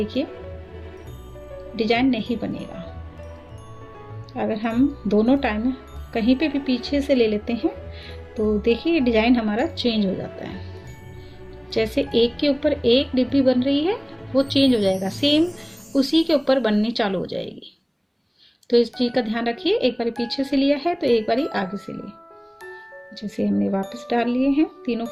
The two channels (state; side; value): identical; both; correlation 1.00